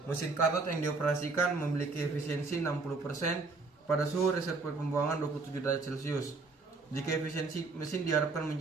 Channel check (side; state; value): left; quieter; 4.0 dB